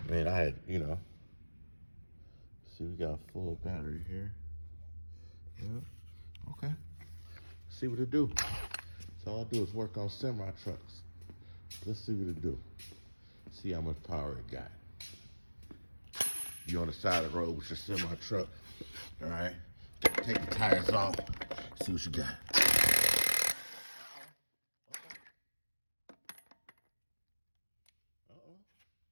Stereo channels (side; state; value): both; inverted; correlation -1.00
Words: Man, I had, see, we got a full battery here. Yeah. Okay. See what it do. So all I do is work on semi trucks. Let's see what it do. See how much power it got. You on the side of the road with your semi truck. All right. Take the tires off. See what you got. Uh-oh.